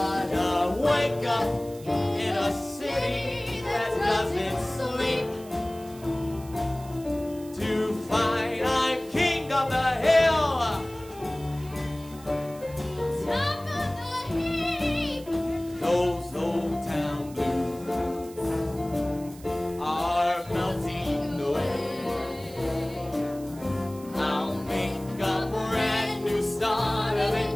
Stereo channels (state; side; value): noise; right; hiss, 21 dB below the sound